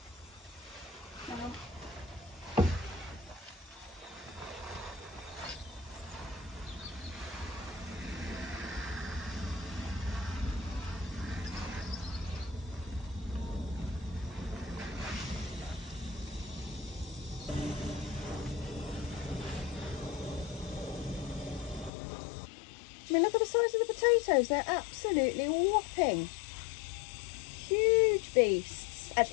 I mean, look at the size of the potatoes. They're absolutely whopping. Huge beasts.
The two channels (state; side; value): drops out; right; at 21.9 s